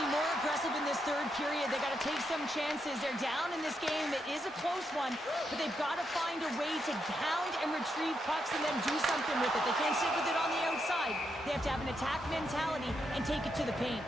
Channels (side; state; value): both; normal; correlation 0.81